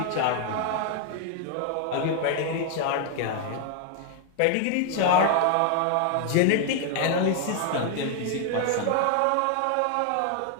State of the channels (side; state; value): both; different; correlation 0.00